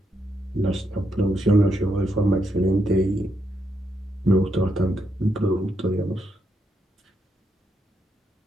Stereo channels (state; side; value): normal; both; correlation 0.80